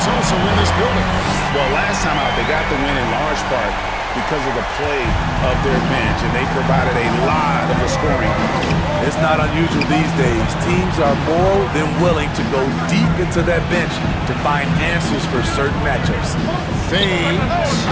also in this building. Well, last time out, they got the win in large part because of the play of their bench, and they provided a lot of the scoring. It's not unusual these days. Teams are more than willing to go deep into that bench to find answers for certain matchups. Fades.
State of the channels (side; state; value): both; identical; correlation 1.00